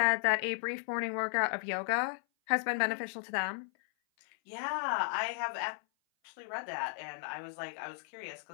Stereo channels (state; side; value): silent; right; 55 dB below the other